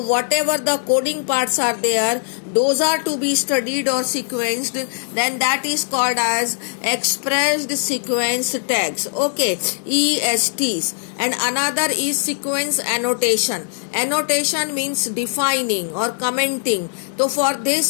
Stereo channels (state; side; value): silent; right; digital silence